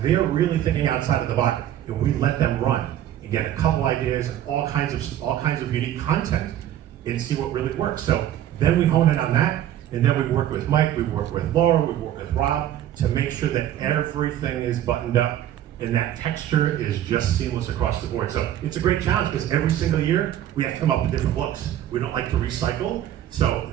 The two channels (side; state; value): left; quieter; 11.7 dB